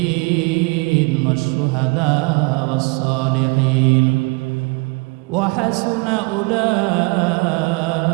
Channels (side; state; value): left; quieter; 28.5 dB